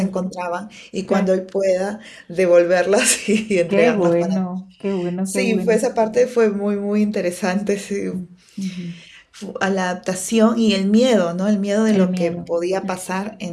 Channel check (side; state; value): both; identical; correlation 1.00